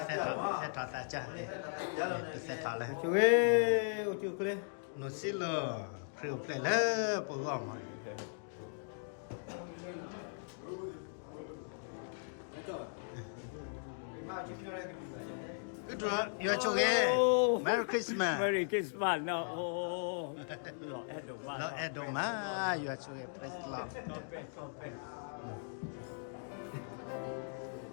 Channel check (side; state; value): right; silent; digital silence